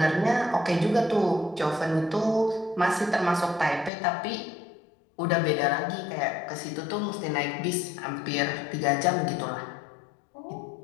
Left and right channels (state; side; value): drops out; right; at 3.9 s